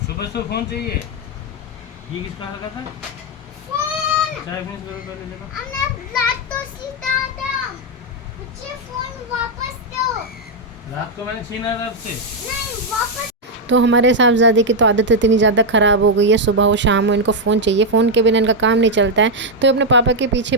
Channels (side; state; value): both; normal; correlation 0.00